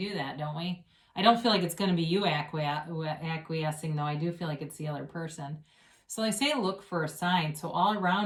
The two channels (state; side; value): identical; both; correlation 1.00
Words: that, don't we? I don't feel like it's going to be you acquiescing, though. I do feel like it's the other person. So they say look for a sign. So all